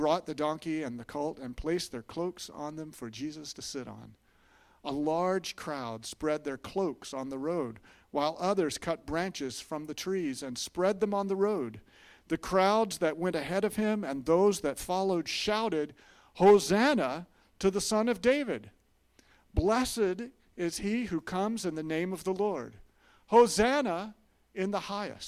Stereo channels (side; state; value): both; identical; correlation 1.00